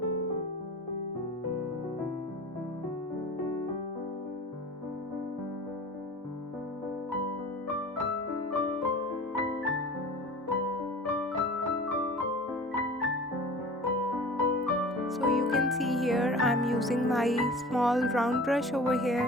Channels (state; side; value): normal; both; correlation 0.40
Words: can see here, I'm using my small round brush over